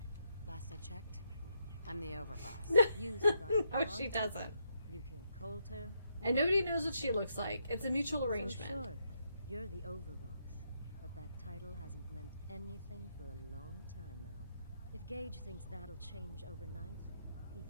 Last I checked, I'm the overboss. You survived No, she Bronte, doesn't. You killed Coulter. And nobody knows what she looks like. It's a mutual arrangement. So sure, you're the overboss. But that title hasn't meant anything for a long time now. If Gage thinks that'll change overnight, he's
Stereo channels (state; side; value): inverted; both; correlation -0.78